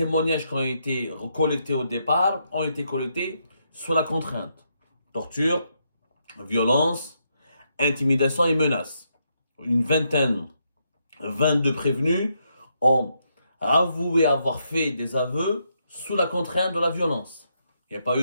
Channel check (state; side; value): inverted; both; correlation -0.79